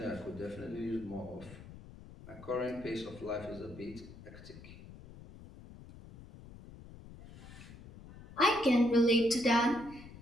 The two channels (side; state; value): left; noise; rumble, 17 dB below the sound